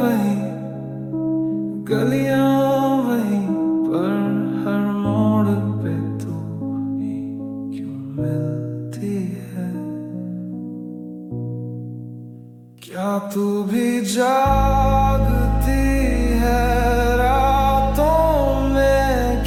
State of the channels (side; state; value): both; identical; correlation 1.00